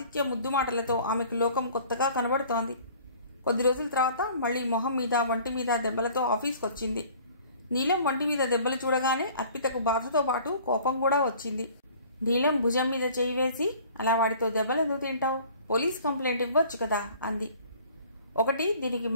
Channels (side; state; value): both; inverted; correlation -0.50